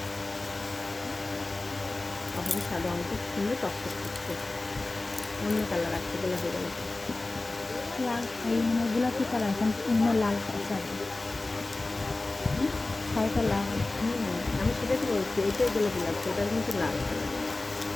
তারপরে সাদা অঙ্ক সুন্দর টকটক করছে, অন্য কালার আসছে গোলাপি গোলাপি। লাল এই মানে গোলাপি কালার এখন অন্য লাল কালার শাড়িটা লাল। আমি সেটা তো বলছি, এটাই গোলাপি লাগছে, এটার কিন্তু লাল কালার।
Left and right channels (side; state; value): right; quieter; 3.0 dB